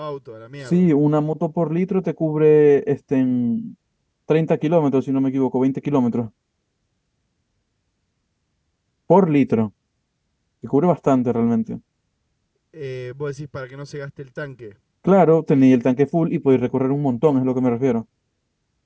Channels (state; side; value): identical; both; correlation 1.00